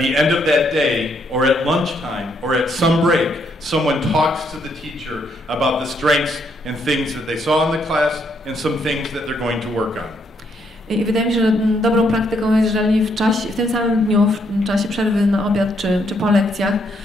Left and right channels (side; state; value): both; normal; correlation 0.74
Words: end of that day, or at lunchtime, or at some break, someone talks to the teacher about the strengths and things that they saw in the class and some things that they're going to work on. I wydaje mi się, że dobrą praktyką jest, jeżeli w tym samym dniu, w czasie przerwy na obiad czy po lekcjach,